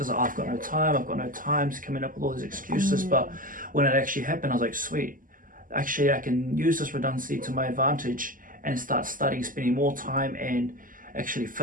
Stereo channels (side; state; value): left; late; 0.40 ms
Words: I've got no time, coming up with all these excuses. But when it actually happened, I was like, sweet, actually I can use this redundancy to my advantage and start studying, spending more time and actually